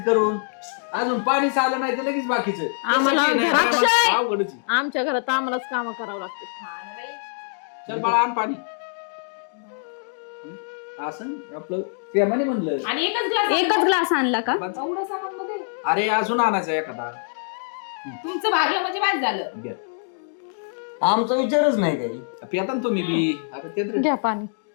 करून? अजून पाणी आलं नाही तर लगेच बाकीचं. आम्हाला तसं काही नाही, अक्षय! आम्हाला अवघडच आहे. आमच्या घरात आम्हालाच काम करावं लागते. हा ना बाई. चल बाळा, आण पाणी. असं आपलं प्रेमाने म्हणलं. आणि एकच एकच ग्लास आणला का? एवढं सामान मध्ये अरे अजून आणायचं एखादा. तुमचं भागलं म्हणजे बाद झालं. घ्या. आमचा विचारच नाही काही. पिता ना तुम्ही बी. आता ते तर- घ्या पाणी.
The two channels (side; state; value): right; silent; digital silence